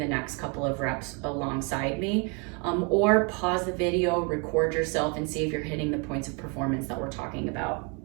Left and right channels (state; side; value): quieter; left; 33.7 dB